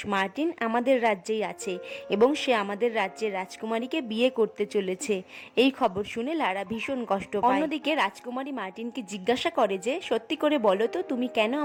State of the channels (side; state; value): both; identical; correlation 1.00